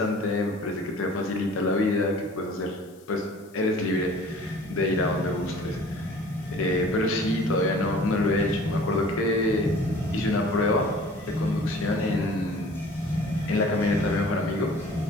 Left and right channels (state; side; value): noise; left; hiss, 28 dB below the sound